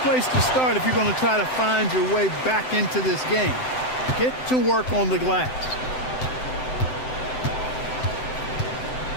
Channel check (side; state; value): right; late; 7.8 ms